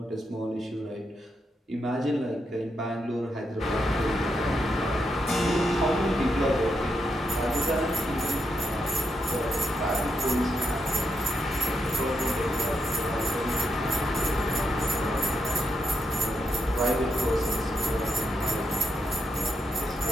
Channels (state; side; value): normal; both; correlation 0.82